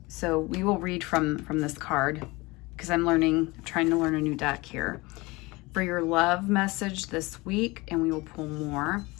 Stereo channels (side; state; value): right; quieter; 23.2 dB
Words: So we will read from this card, because I'm trying to learn a new deck here. For your love message this week, and we will pull more.